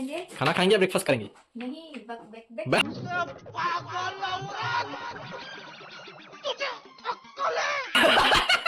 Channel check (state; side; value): identical; both; correlation 1.00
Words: खाना खाएंगे, ब्रेकफास्ट करेंगे। नहीं